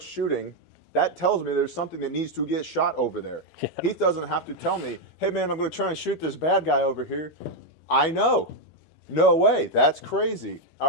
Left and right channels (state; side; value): late; right; 13 ms